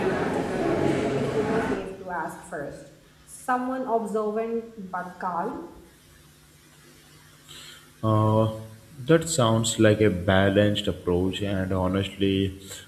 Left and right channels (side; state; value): both; identical; correlation 1.00